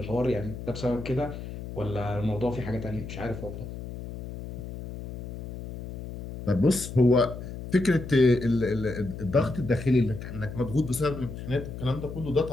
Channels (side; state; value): left; noise; hum, 10 dB below the sound